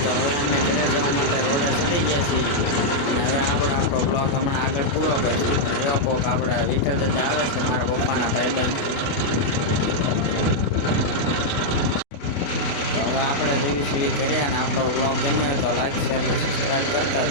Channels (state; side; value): late; right; 28 ms